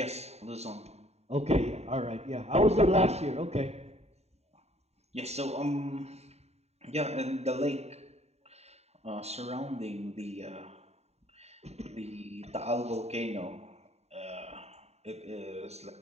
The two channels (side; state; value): left; late; 0.31 ms